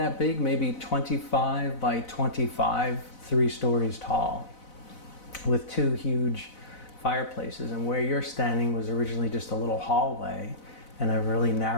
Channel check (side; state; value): right; late; 4.0 ms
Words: big, maybe 25 by 25, 3 stories tall, with 2 huge fireplaces. And where you're standing was originally just a little hallway and a really